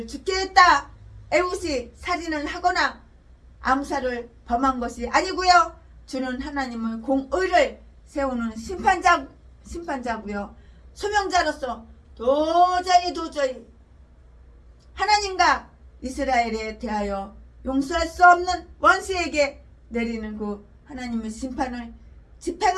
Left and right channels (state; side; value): identical; both; correlation 1.00